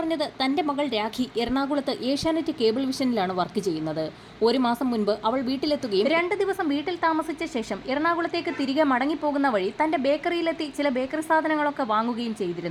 തന്റെ മകൾ രാഖി എറണാകുളത്ത് ഏഷ്യാനെറ്റ് കേബിൾ വിഷനിലാണ് വർക്ക് ചെയ്യുന്നത്. 1 മാസം മുൻപ് അവൾ വീട്ടിലെത്തുകയും 2 ദിവസം വീട്ടിൽ താമസിച്ച ശേഷം എറണാകുളത്തേക്ക് തിരികെ മടങ്ങിപ്പോകുന്ന വഴി തന്റെ ബേക്കറിയിലെത്തി ചില ബേക്കറി സാധനങ്ങളൊക്കെ വാങ്ങുകയും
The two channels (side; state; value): both; identical; correlation 1.00